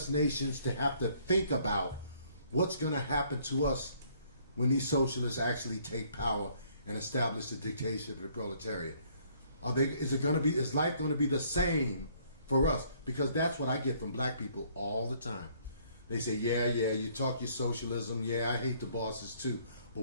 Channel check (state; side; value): inverted; both; correlation -0.63